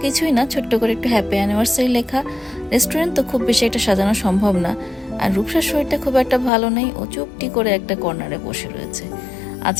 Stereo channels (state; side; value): drops out; right; at 6.5 s